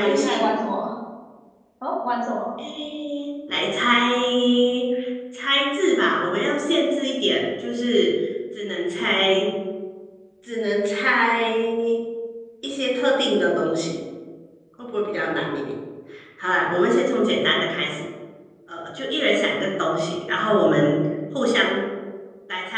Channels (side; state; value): both; identical; correlation 1.00